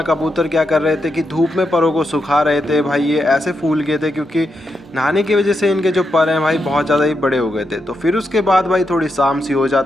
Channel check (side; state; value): both; normal; correlation 0.84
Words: कबूतर क्या कर रहे थे कि धूप में परों को सुखा रहे थे। भाई ये ऐसे फूल गए थे क्योंकि नहाने की वजह से इनके जो पर हैं भाई बहुत ज़्यादा ही बड़े हो गए थे। तो फिर उसके बाद भाई थोड़ी शाम सी हो